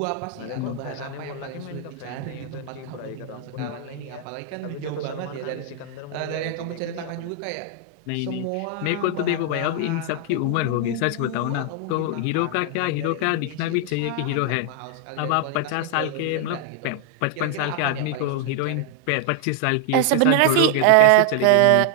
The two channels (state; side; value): different; both; correlation 0.00